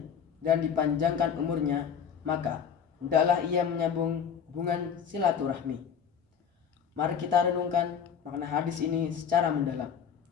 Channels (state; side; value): quieter; right; 7.5 dB